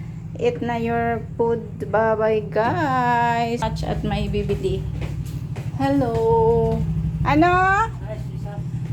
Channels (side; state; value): both; identical; correlation 1.00